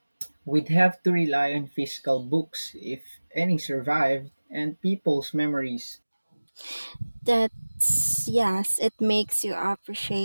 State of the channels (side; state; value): both; inverted; correlation -1.00